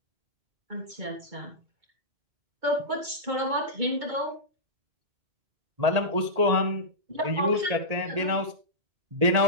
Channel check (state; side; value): late; left; 2.2 ms